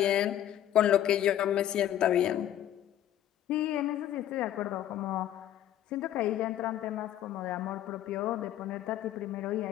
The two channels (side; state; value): right; quieter; 11.8 dB